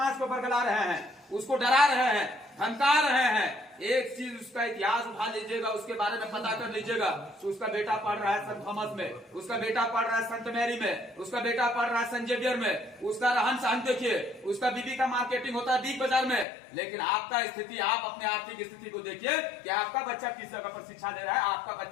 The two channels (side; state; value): right; drops out; at 16.4 s